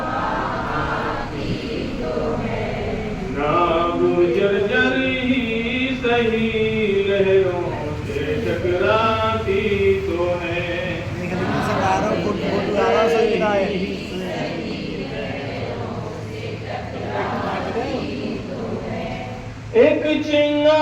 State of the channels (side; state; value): both; identical; correlation 1.00